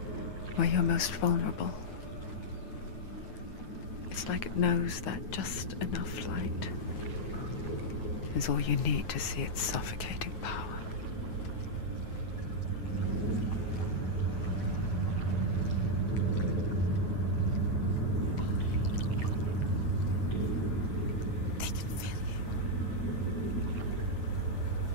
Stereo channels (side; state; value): right; late; 9.3 ms